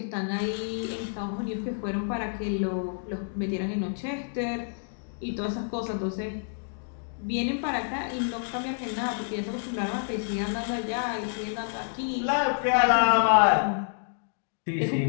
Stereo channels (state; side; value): silent; right; digital silence